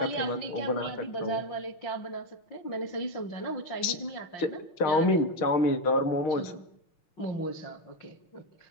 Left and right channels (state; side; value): late; right; 6.4 ms